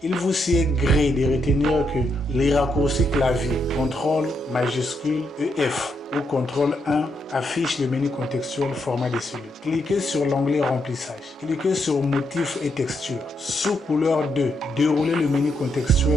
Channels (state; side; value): normal; both; correlation 0.79